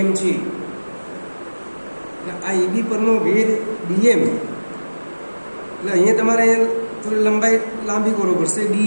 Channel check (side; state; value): both; inverted; correlation -1.00